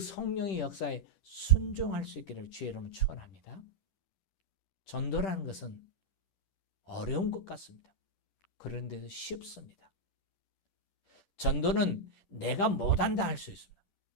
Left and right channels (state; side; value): late; right; 11 ms